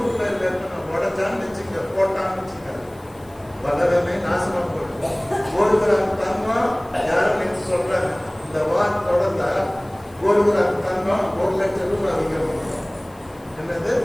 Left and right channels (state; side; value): noise; left; hiss, 28 dB below the sound